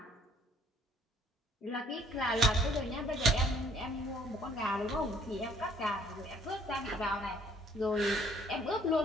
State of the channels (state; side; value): normal; both; correlation 0.60